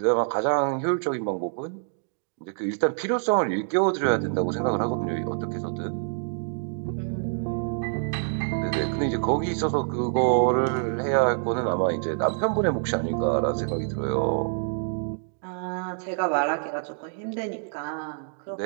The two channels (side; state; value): left; silent; digital silence